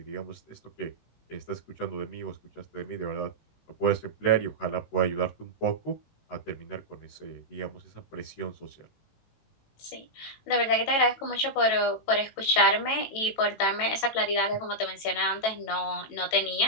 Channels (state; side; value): late; right; 18 ms